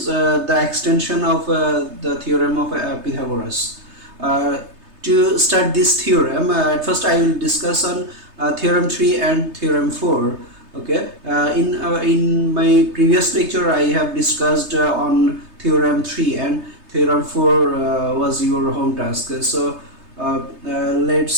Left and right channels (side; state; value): left; late; 3.3 ms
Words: the extension of the theorem of Pythagoras. To start this theorem, at first I will discuss on theorem 3 and theorem 4. Okay, in my previous lecture I have discussed on theorem 3, and theorem 4 was your home task. So